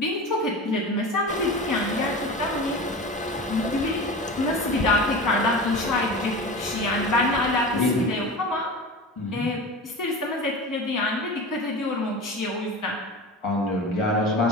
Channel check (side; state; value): both; normal; correlation 0.31